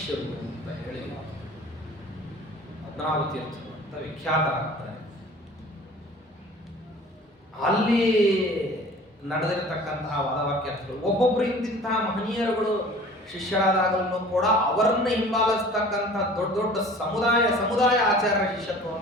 ಅಂತ ಹೇಳಿ ಪದ್ಮನಾಭ ತೀರ್ಥರು ಅಂತ ವಿಖ್ಯಾತರಾಗ್ತಾರೆ. ಅಲ್ಲಿ ನಡೆದಿರತಕ್ಕಂತಹ ವಾದವಾಕ್ಯಾರ್ಥಗಳು ಒಬ್ಬೊಬ್ರು ಇಂತಿಂತಹ ಮಹನೀಯರುಗಳು ಶಿಷ್ಯರಾದಾಗಲೂ ಕೂಡ ಅವರನ್ನ ಹಿಂಬಾಲಿಸ್ತಕ್ಕಂಥ ದೊಡ್ಡ ದೊಡ್ಡ ಸಮುದಾಯ ಆಚಾರ್ಯ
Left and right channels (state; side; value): normal; both; correlation 0.46